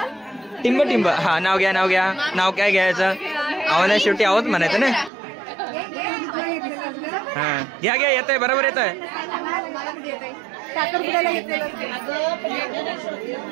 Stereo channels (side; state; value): left; drops out; at 5.1 s